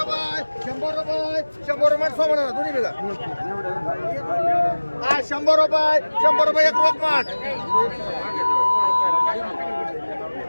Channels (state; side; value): inverted; both; correlation -1.00